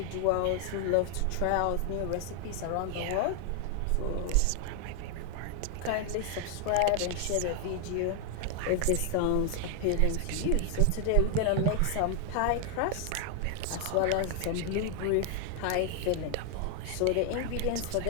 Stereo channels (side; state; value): both; different; correlation 0.00